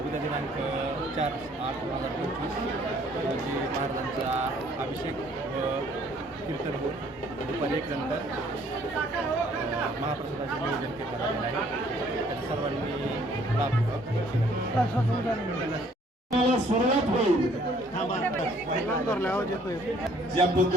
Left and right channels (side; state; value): both; normal; correlation 0.61